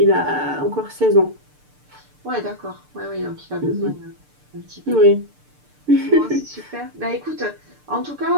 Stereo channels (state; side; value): late; left; 6.7 ms